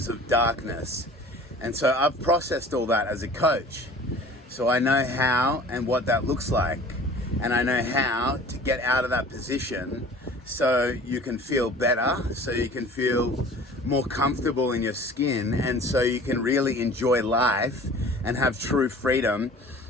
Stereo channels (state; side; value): normal; both; correlation 0.45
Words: of darkness. And so I've processed all that as a coach. So I know how and what that looks like. And I know how to get out of that position so you can feel better, so you can feel more comfortable in your skin, and so you can really enjoy life and have true freedom